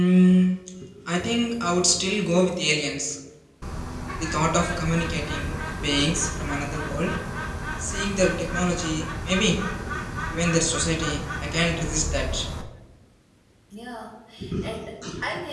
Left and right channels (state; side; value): identical; both; correlation 1.00